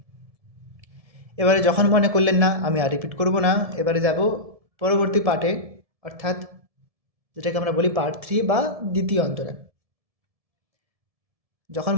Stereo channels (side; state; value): left; late; 1.7 ms